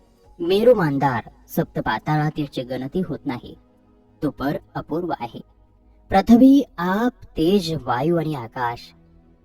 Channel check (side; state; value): both; identical; correlation 1.00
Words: मेरू मांदार, सप्त पाताळात याची गणती होत नाही. तो पर अपूर्व आहे. पृथ्वी, आप, तेज, वायू आणि आकाश